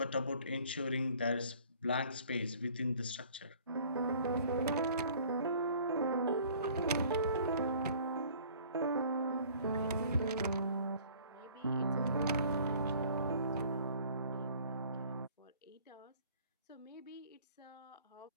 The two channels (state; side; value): inverted; both; correlation -0.53